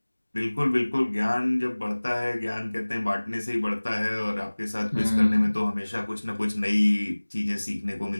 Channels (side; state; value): both; inverted; correlation -1.00